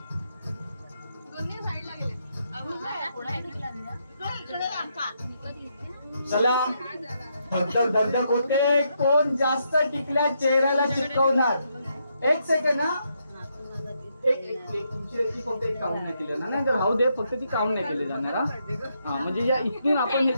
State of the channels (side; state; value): both; inverted; correlation -0.79